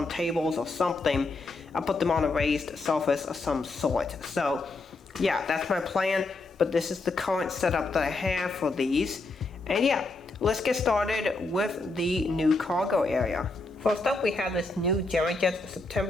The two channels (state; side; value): quieter; right; 3.3 dB